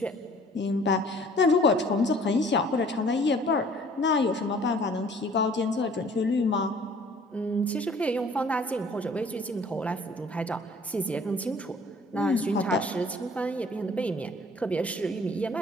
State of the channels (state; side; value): normal; both; correlation 0.54